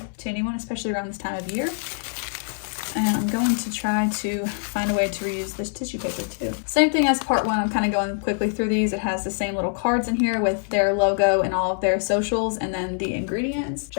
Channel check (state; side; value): silent; right; digital silence